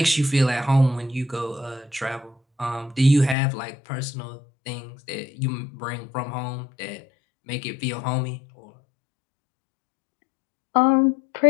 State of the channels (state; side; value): drops out; right; at 3.4 s